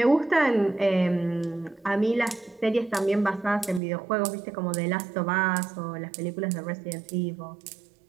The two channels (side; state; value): left; drops out; at 3.8 s